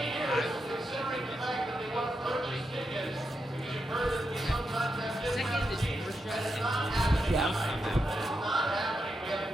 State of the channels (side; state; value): both; normal; correlation 0.85